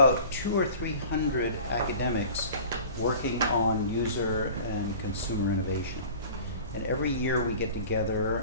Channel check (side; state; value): both; inverted; correlation -0.42